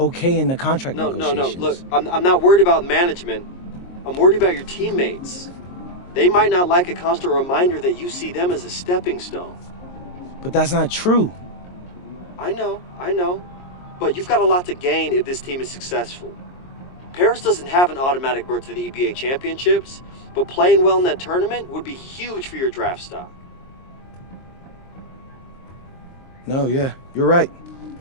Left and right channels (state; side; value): late; right; 22 ms